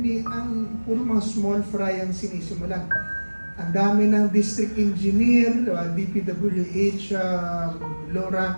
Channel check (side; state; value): both; inverted; correlation -1.00